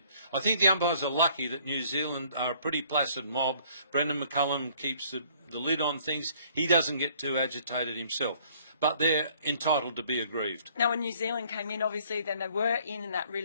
I think the umpires are lucky that New Zealand are a pretty placid mob. Brendan McCullum keeps the lid on things. He doesn't get too agitated himself. But they're entitled to be aggrieved. Now, when New Zealand came in, obviously, then they were in that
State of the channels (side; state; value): both; inverted; correlation -0.59